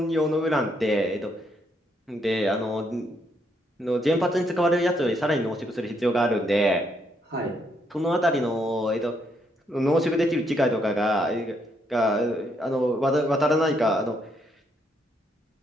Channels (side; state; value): both; normal; correlation 0.74